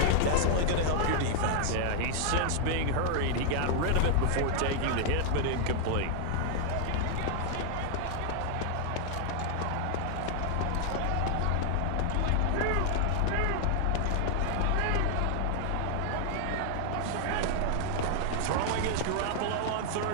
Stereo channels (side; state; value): both; different; correlation 0.00